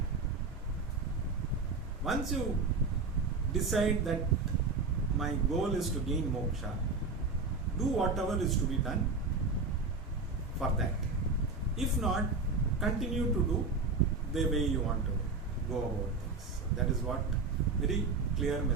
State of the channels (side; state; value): left; quieter; 4.0 dB